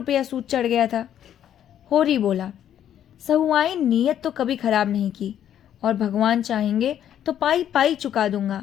सूद चढ़ गया था। होरी बोला, सहुआई नीयत तो कभी खराब नहीं की, और भगवान चाहेंगे तो पाई पाई चुका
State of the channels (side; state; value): right; quieter; 10.3 dB